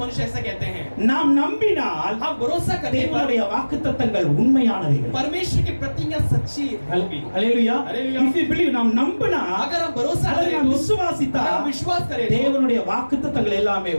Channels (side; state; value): both; inverted; correlation -1.00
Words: मनुष्य ऐसा कहते हैं நாம் நம்பினால் हम भरोसा करने पर தேவனுடைய வாக்குத்தத்தங்கள் உண்மையானவைகள் परमेश्वर की प्रतिज्ञा सच्ची होगी। அல்லேலூயா हालेलुया। if you believe நாம் நம்பினா अगर हम भरोसा அதை करें நாம் तो விசுவாசித்தா अगर हम विश्वास करें तो தேவனுடைய வாக்குத்தத்தங்கள் எல்லாமே